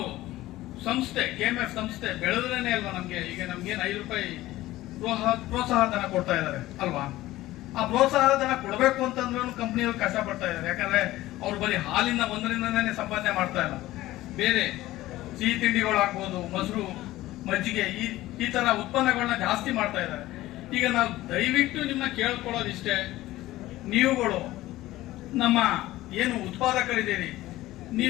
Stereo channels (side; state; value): right; quieter; 16.5 dB